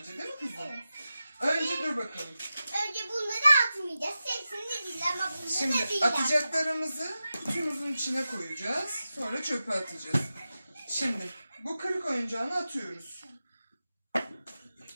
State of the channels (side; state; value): both; inverted; correlation -0.92